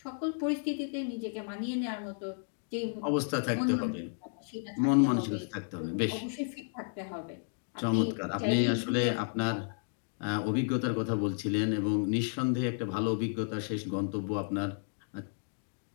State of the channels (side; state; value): right; silent; digital silence